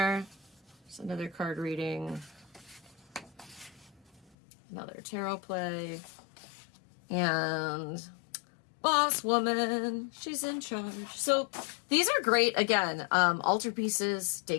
There's another card reading. Another tarot play. And boss woman, she's in charge. So these are great, again, altarpieces,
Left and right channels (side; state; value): right; drops out; at 4.2 s